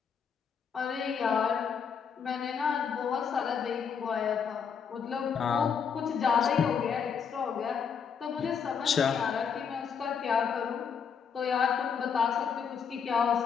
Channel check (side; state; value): right; quieter; 6.7 dB